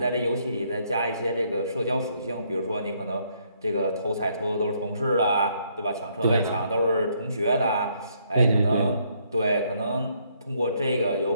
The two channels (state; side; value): inverted; both; correlation -0.70